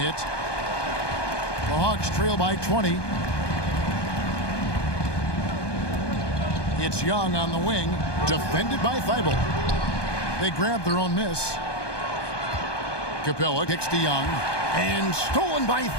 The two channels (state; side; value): late; right; 1.2 ms